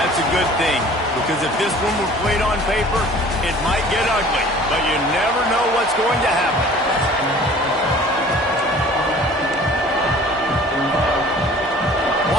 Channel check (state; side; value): normal; both; correlation 0.48